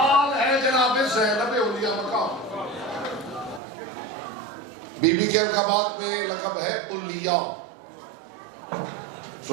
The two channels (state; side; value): drops out; left; at 3.6 s